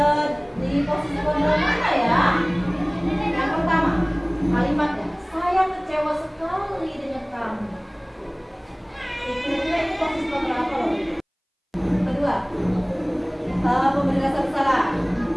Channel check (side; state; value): both; identical; correlation 1.00